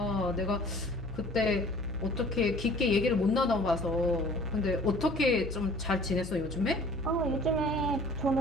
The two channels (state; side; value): noise; left; hum, 12 dB below the sound